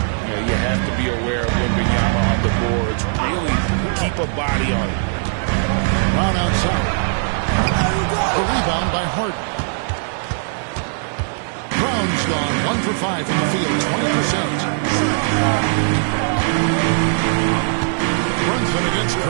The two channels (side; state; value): left; silent; digital silence